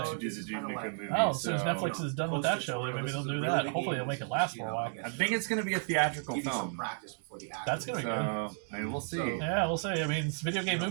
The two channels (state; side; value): silent; left; 56 dB below the other